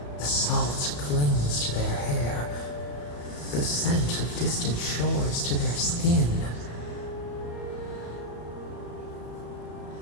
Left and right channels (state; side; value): late; right; 34 ms